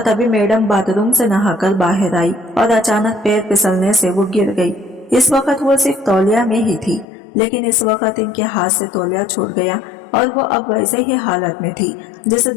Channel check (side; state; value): right; drops out; at 7.1 s